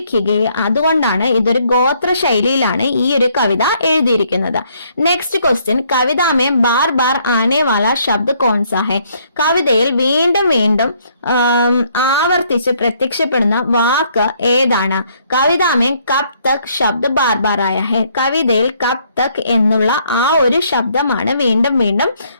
ഗയി, അതുകൊണ്ടാണ് ഇതൊരു ഗോത്ര ശൈലിയിലാണ് ഈ ഒരു കവിത എഴുതിയിരിക്കുന്നത്. നെക്സ്റ്റ് ക്വസ്റ്റ്യൻ, കവിതാമേ ബാർ ബാർ ആനെ വാല ശബ്ദ് കോൺസാ ഹെ, കവിതയിൽ വീണ്ടും വീണ്ടും ആവർത്തിച്ച് പ്രത്യക്ഷപ്പെടുന്ന വാക്ക് ഏതാണ്? കവിതാമേ കബ് തക് ശബ്ദ് ബാർ ബാർ ആയ ഹെ, കവിതയിൽ കബ് തക് എന്നുള്ള ആ ഒരു ശബ്ദമാണ് വീണ്ടും വീണ്ടും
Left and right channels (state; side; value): inverted; both; correlation -0.68